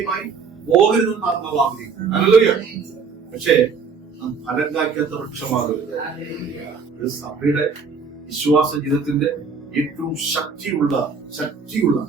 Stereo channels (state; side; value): quieter; left; 5.3 dB